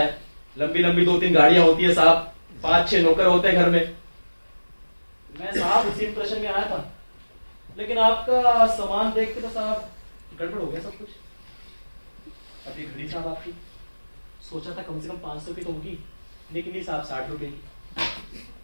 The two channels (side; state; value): both; inverted; correlation -1.00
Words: लंबी लंबी 2-3 गाड़ियां होती है साहब, 5-6 नौकर होते हैं घर में। मैं साहब उसी इंप्रेशन में आया था, लेकिन आपका सामान देख के तो साहब गड़बड़ हो गया सब कुछ। अभी घड़ी साहब आपकी सोचा था कम से कम 500 की तो होगी, लेकिन ये साहब 60 रुपए की।